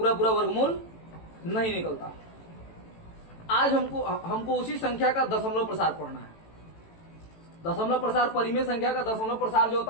पूरा वर्गमूल नहीं निकलता। आज हमको उसी संख्या का दशमलव प्रसार पढ़ना है। दशमलव प्रसार, परिमेय संख्या का दशमलव प्रसार जो होता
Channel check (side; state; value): right; late; 18 ms